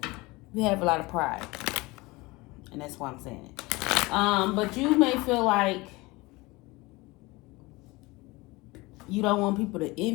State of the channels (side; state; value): right; quieter; 22.7 dB